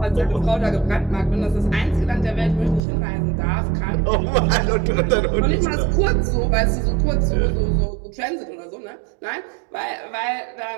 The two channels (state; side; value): drops out; left; at 2.8 s